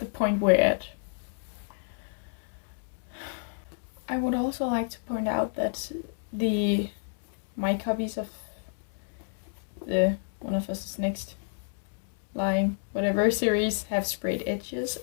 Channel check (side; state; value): right; silent; digital silence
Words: point we're at. I would also like to point out that my copies of the One of Us is Next line, whatever series, have sprayed edges,